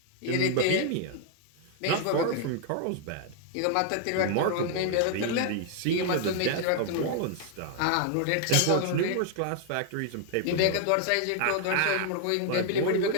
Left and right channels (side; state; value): both; different; correlation 0.00